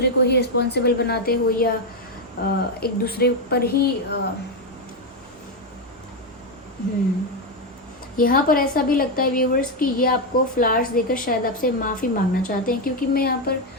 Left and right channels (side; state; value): both; normal; correlation 0.06